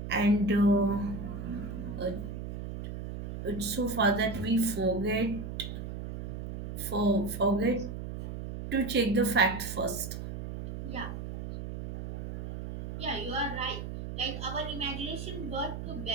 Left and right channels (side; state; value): right; noise; hum, 6 dB below the sound